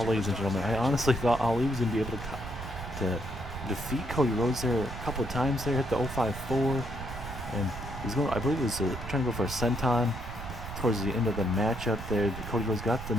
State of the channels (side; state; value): right; noise; rumble, 10 dB below the sound